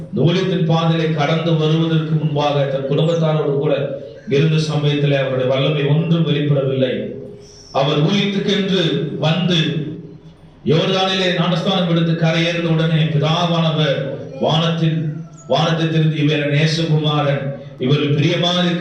ஊழியத்தின் பாதையை கடந்து வருவதற்கு முன்பாக தன் குடும்பத்தாரோடு கூட இருந்த சமயத்தில் அவருடைய வல்லமை ஒன்றும் வெளிப்படவில்லை. அவர் ஊழியத்துக்கென்று வந்து யோர்தானிலே ஞானஸ்நானம் எடுத்து கரையேறின உடனே பிதாவானவர் வானத்தை திறந்து இவர் நேசகுமாரன், இவர் பிரியமா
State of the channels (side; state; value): both; identical; correlation 1.00